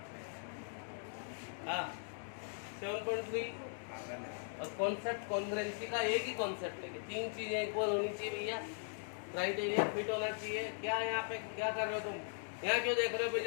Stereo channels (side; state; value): right; silent; digital silence